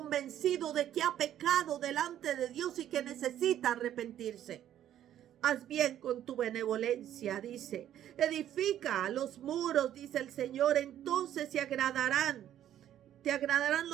de que ha pecado delante de Dios y que necesita arrepentirse. Haz bien con tu benevolencia, dice. Edifica los muros, dice el Señor, entonces te agradarán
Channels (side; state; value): left; quieter; 11.3 dB